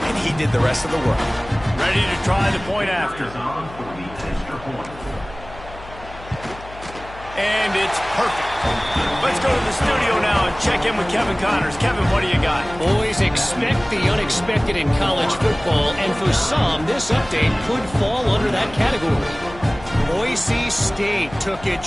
he did the rest of the work. Ready to try the point after. And it's perfect. Let's go to the studio now and check in with Kevin Connors. Kevin, what do you got? Boys, expect the unexpected in college football, and for some, this update could fall under that category. Boise State took its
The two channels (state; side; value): noise; left; hum, 17 dB below the sound